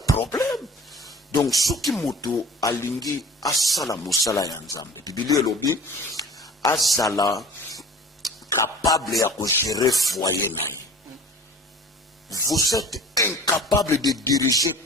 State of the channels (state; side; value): normal; both; correlation 0.43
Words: problème. Donc ce qui moto a lingi asala musala yanzambe. Biblia lobi asala capable ya ko gérer foyer naï. Vous êtes incapable de diriger